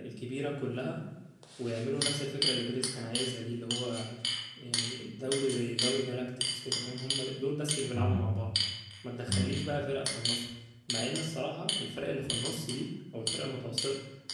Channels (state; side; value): identical; both; correlation 1.00